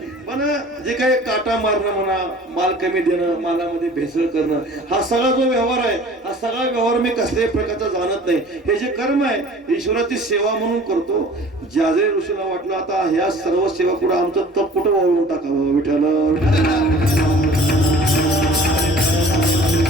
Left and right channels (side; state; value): both; normal; correlation 0.47